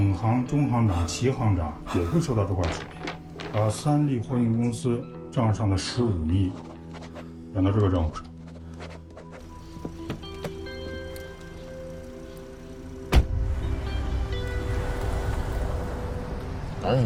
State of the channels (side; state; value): both; identical; correlation 1.00